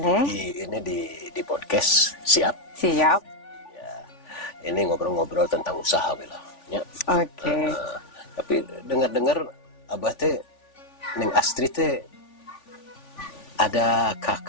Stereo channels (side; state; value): right; late; 3.5 ms